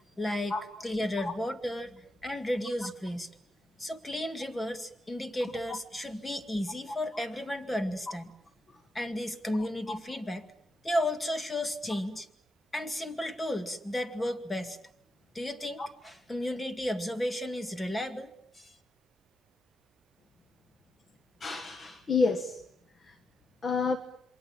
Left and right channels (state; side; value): normal; both; correlation 0.86